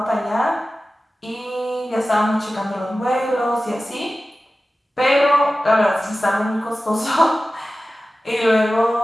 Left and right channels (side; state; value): both; normal; correlation 0.95